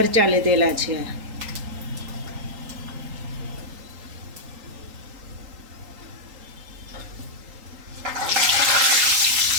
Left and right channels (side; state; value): left; late; 3.8 ms